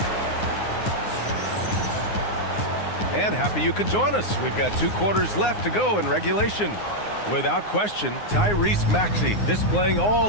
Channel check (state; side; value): late; right; 9.7 ms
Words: And happy you could join us. We've got 2 quarters left to go in regulation. Without question, Tyrese Maxey displaying